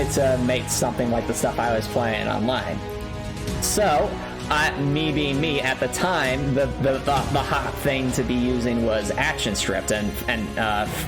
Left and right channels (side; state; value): both; identical; correlation 1.00